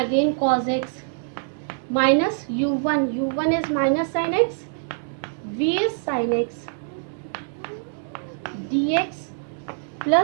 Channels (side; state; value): left; silent; digital silence